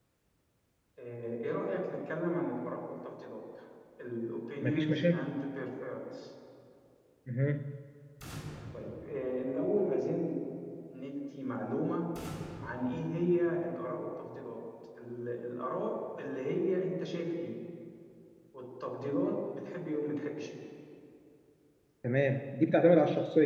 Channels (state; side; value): identical; both; correlation 1.00